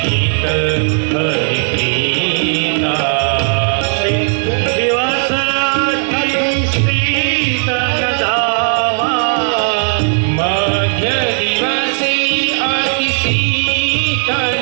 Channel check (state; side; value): silent; left; 69 dB below the other